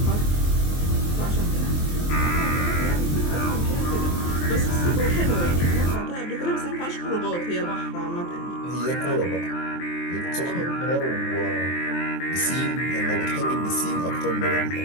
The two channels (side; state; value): right; late; 23 ms